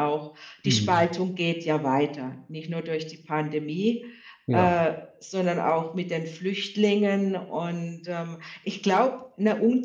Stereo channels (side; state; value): both; identical; correlation 1.00